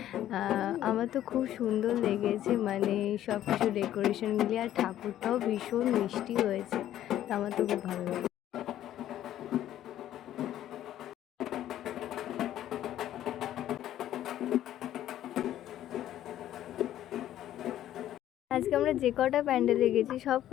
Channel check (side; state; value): right; quieter; 12.3 dB